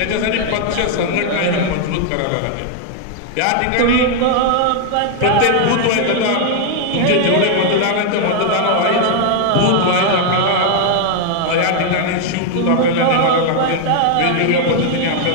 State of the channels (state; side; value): different; both; correlation 0.00